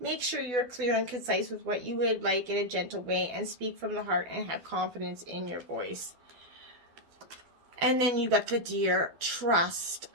Make sure you're clear and concise with what you would like in a gentle way, and speak from the heart and have confidence in your voice. And then you got the deer, trust.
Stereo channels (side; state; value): left; late; 12 ms